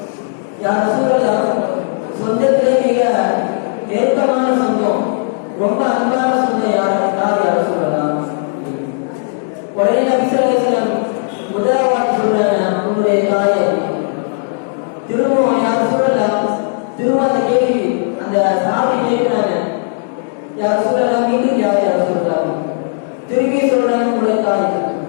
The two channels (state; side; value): silent; right; digital silence